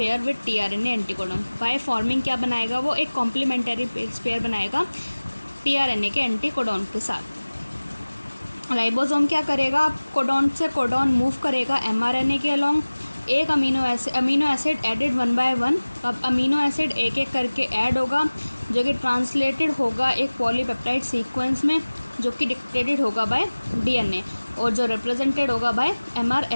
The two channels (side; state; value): both; inverted; correlation -1.00